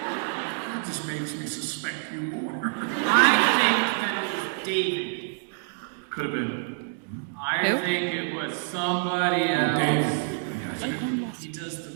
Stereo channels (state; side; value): silent; left; digital silence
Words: just makes me suspect you more. I think that it was David. Could have been. I Who? think it was somebody else. Dave. He does the